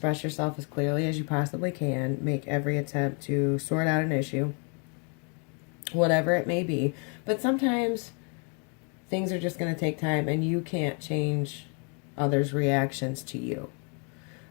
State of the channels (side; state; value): right; quieter; 37.4 dB